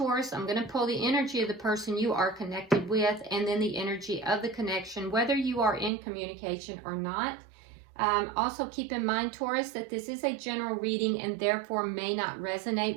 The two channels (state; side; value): drops out; left; at 5.9 s